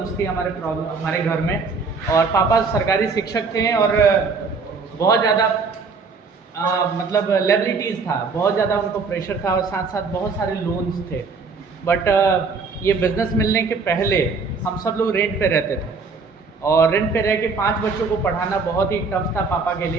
थी हमारे घर में। और पापा सरकारी शिक्षक थे और बहुत ज़्यादा मतलब लायबिलिटीज़ था, बहुत ज़्यादा उनको प्रेशर था और साथ साथ बहुत सारे लोन्स थे। बट ये बिज़नेस मिलने के पहले हम सब लोग रेंट पे रहते थे और रेंट पे रह के 5 बच्चों को पढ़ाना बहुत ही टफ था पापा के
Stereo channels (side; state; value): left; quieter; 4.6 dB